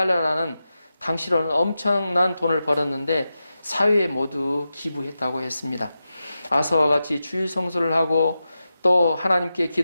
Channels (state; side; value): inverted; both; correlation -0.91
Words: 당시로는 엄청난 돈을 벌었는데 사회에 모두 기부했다고 했습니다. 아서와 같이 주일 성수를 하고 또 하나님께